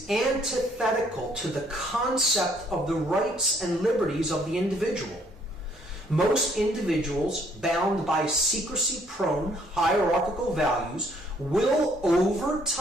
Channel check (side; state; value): both; normal; correlation 0.65